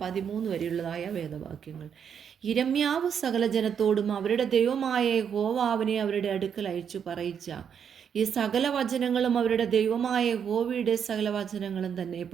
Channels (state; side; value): quieter; left; 7.7 dB